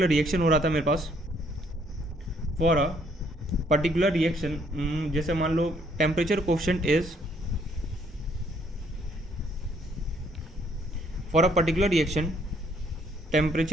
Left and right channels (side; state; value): both; normal; correlation 0.66